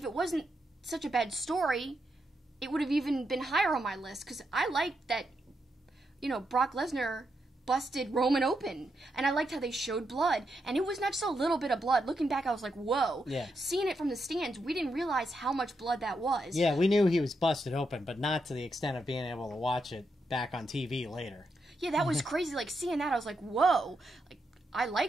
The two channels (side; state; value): both; normal; correlation 0.83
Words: it wasn't such a bad story, it would have even been higher on my list. Because I liked that, Brock Lesnar busted Roman open, and I liked how they showed blood, and it was not just a little bit of blood. Looking back, I was like, whoa. Yeah. Seeing it from the stands, we didn't realize how much blood that was. Yeah, we knew he was busted open, but not to the extent of being able to watch it back on TV later. Yeah, that was crazy. Like, seeing that, I was like, whoa. Like, I